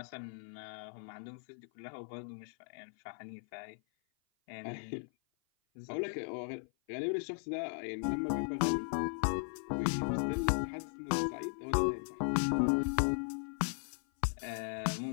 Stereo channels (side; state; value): right; silent; 53 dB below the other